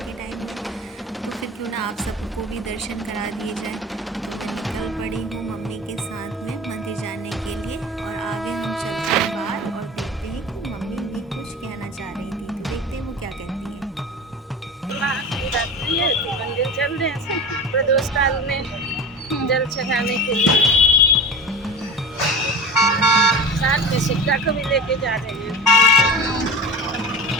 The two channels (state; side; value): normal; both; correlation 0.33